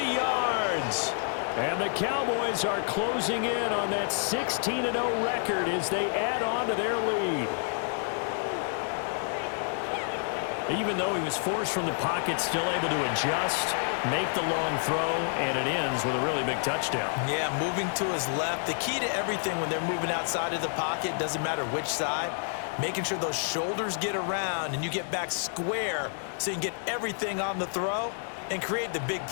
yards. And the Cowboys are closing in on that 16-0 record as they add on to their lead. Even though he was forced from the pocket, still able to adjust, make the long throw, and it ends with a really big touchdown. Yeah, moving to his left. The key to everything when they're moving outside of the pocket, doesn't matter which side, making sure those shoulders get around and you get back square so you can get everything on the throw and create the big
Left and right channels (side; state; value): right; silent; 59 dB below the other